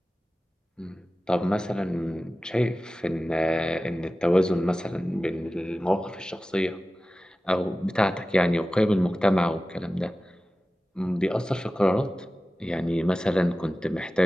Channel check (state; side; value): normal; both; correlation 0.96